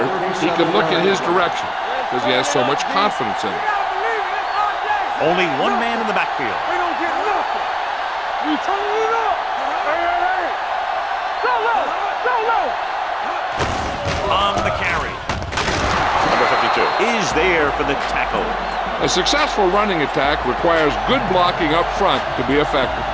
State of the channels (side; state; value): both; identical; correlation 1.00